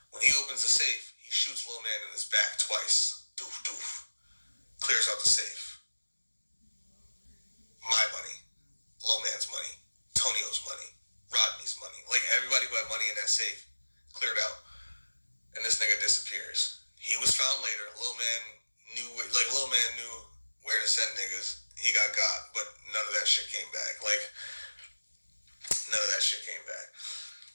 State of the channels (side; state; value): both; inverted; correlation -1.00